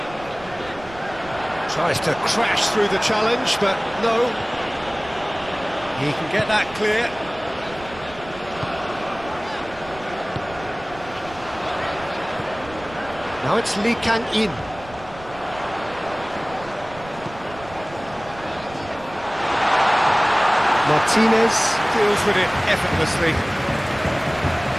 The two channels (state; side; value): noise; right; rumble, 18 dB below the sound